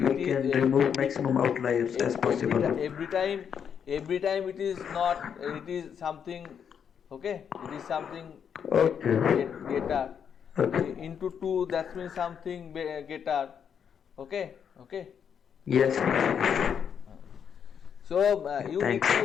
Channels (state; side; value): quieter; right; 7.7 dB